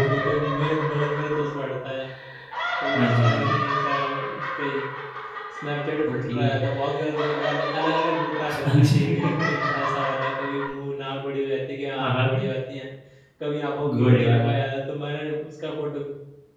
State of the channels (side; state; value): both; identical; correlation 1.00